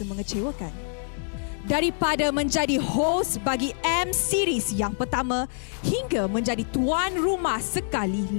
mengecewakan. Daripada menjadi host bagi M Series yang pertama hingga menjadi tuan rumah sekali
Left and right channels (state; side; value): silent; right; digital silence